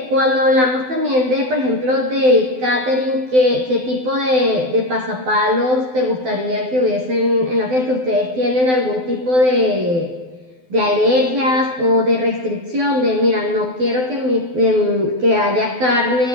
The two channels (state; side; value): late; left; 12 ms